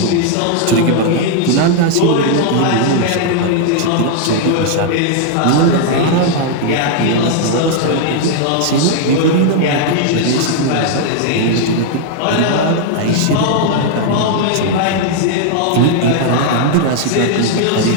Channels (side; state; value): both; different; correlation -0.01